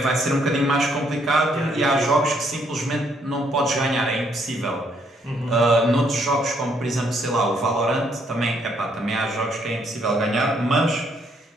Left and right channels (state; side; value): normal; both; correlation 0.70